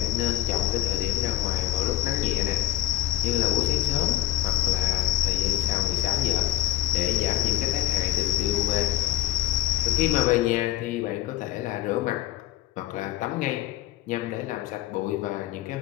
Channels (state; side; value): quieter; right; 14.4 dB